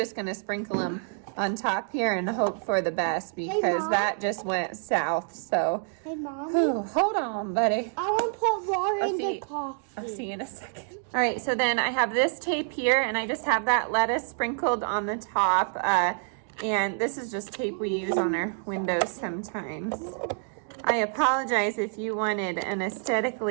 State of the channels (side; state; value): left; silent; 60 dB below the other